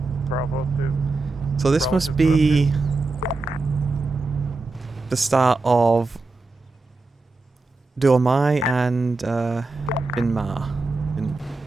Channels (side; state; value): left; quieter; 3.5 dB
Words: Bravo 2. So this Bravo must 2, be the start of Dormai and Binbar.